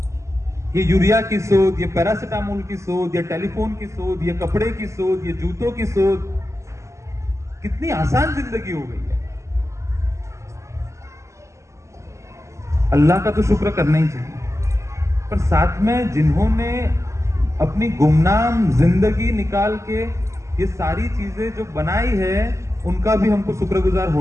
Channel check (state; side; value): late; left; 0.14 ms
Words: ये यूरिया की शोध, ये पैरासिटामोल की शोध, ये टेलीफोन की शोध, ये कपड़े की शोध, ये जूतों की शोध, कितनी आसान जिंदगी हो गई है। अल्लाह का तो शुक्र करना ही चाहिए, पर साथ में जिन्होंने अपनी गुमनाम जिंदगी निकाल के ये सारी चीजें जो बनाई है उनका भी हमको शुक्रगुजार